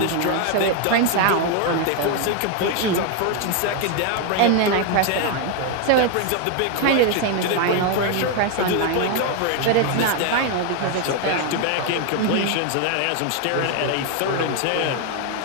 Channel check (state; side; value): different; both; correlation 0.01